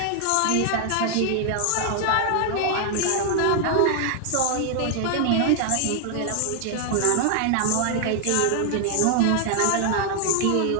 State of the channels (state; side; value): different; both; correlation 0.00